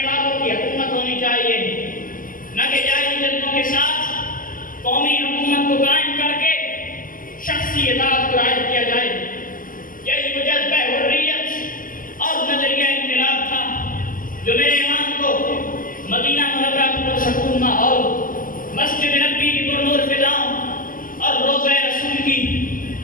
والوں کی حکومت ہونی چاہیے، نہ کہ جائز جذبوں کے ساتھ قومی حکومت کو قائم کر کے شخصی اطاعت کو رائج کیا جائے۔ یہی وہ جذبہ حریت اور نظریہ انقلاب تھا جو میرے امام کو مدینہ منورہ کی پرسکون ماحول، مسجد نبی کی پرنور فضاؤں اور روضہ رسول کی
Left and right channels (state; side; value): late; right; 0.40 ms